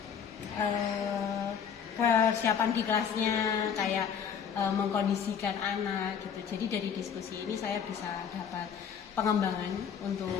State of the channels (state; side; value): quieter; right; 7.5 dB